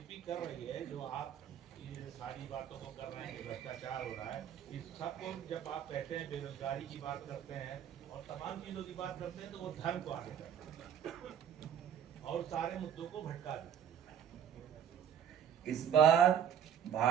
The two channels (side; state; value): left; quieter; 8.9 dB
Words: कर रही है, जो आप ये सारी बातों को कर रहे हैं कि भ्रष्टाचार हो रहा है, इस सबको जब आप कहते हैं बेरोजगारी की बात करते हैं और तमाम चीजों की बात करते हैं तो वो धर्म को आगे करते हैं और सारे मुद्दों को भटका देते हैं। इस बार